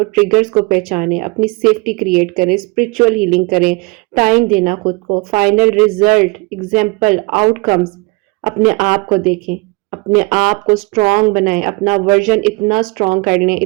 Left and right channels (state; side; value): quieter; left; 27.1 dB